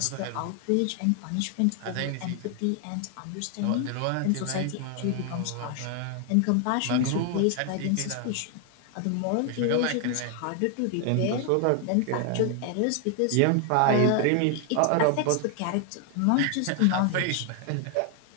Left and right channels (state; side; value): different; both; correlation 0.00